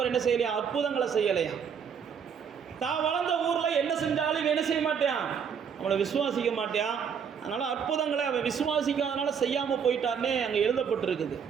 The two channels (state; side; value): quieter; left; 7.1 dB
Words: என்ன செய்யலையா, அற்புதங்களை செய்யலையா. தான் வளர்ந்த ஊரில் என்ன செஞ்சாலும் என்ன செய்ய மாட்டான், அவனை விசுவாசிக்க மாட்டான். அதனால் அற்புதங்களை அவன் விசுவாசிக்காதனால செய்யாமல் போயிட்டார்னே அங்கே எழுதப்பட்டிருக்குது.